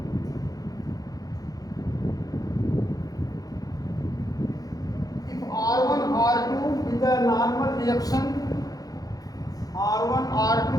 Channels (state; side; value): late; right; 0.18 ms